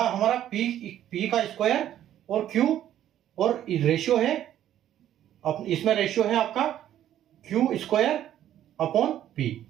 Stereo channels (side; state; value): left; quieter; 11.6 dB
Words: हमारा P का स्क्वायर और Q, और रेशियो है, इसमें रेशियो है आपका Q स्क्वायर अपॉन P।